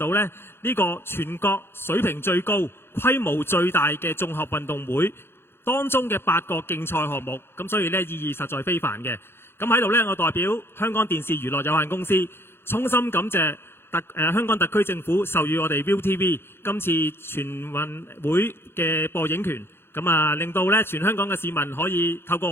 咧呢個全國水平最高、規模最大嘅綜合運動會當中嘅8個競賽項目，咁所以咧意義實在非凡嘅。咁喺度咧，我代表香港電視娛樂有限公司衷心感謝香港特區政府授予我哋 ViuTV 今次全運會嘅播映權，咁啊令到咧全香港嘅市民可以透過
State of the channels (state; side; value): late; right; 0.11 ms